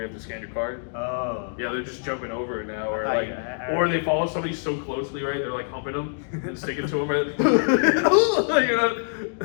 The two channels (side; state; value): right; silent; digital silence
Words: have to scan your card. Oh. Yeah, they're just jumping over it now, or I- like, I- or they follow somebody so closely, right? They're like humping them and sticking to them, right?